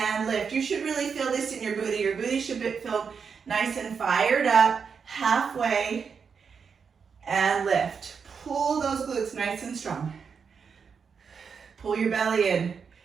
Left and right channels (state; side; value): quieter; left; 6.1 dB